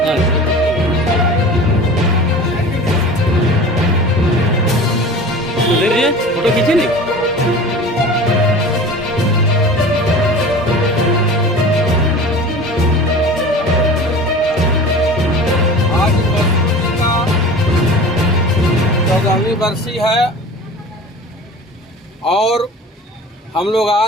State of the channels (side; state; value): both; normal; correlation 0.38